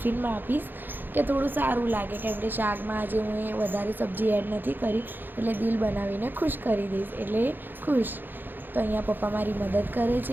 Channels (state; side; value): late; left; 0.093 ms